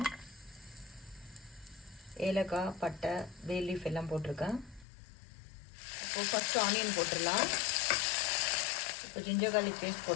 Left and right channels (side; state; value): right; drops out; at 4.9 s